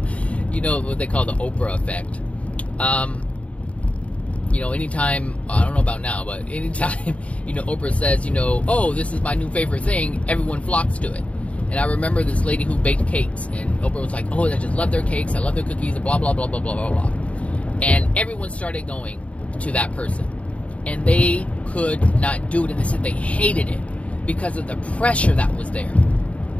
what they call the Oprah effect. Anytime, I don't know about now, but anytime, Oprah says, oh, this is my new favorite thing, everyone flocks to it. And I remember this lady who baked cakes, and Oprah was like, oh, I just love their cakes, I love their cookies, and blah, blah, blah, blah, blah, blah, blah. And everyone started going to that person. And they could not do it, and they said they hated it because of the pressure that was there.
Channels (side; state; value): right; late; 0.065 ms